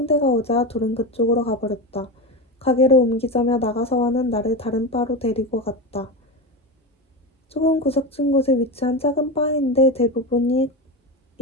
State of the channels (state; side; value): normal; both; correlation 0.19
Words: 오자 둘은 그쪽으로 가버렸다. 가게를 옮기자며 나가사와는 나를 다른 바로 데리고 갔다. 조금 구석진 곳에 위치한 작은 바인데 대부분이